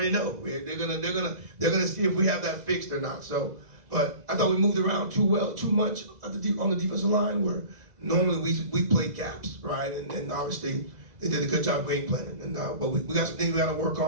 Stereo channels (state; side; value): late; left; 2.0 ms